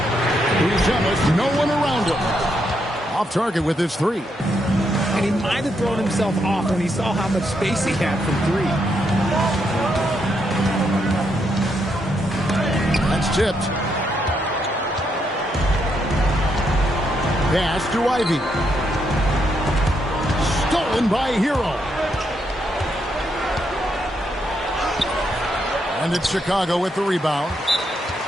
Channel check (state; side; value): normal; both; correlation 0.78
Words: He's jealous. No one around him. Off target with his three. And he might have thrown himself off when he saw how much space he had from three. That's tipped. Pass to Ivy. Stolen by Hero. And it's Chicago with the rebound.